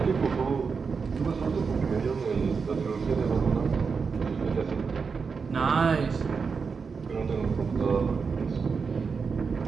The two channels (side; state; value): left; quieter; 5.4 dB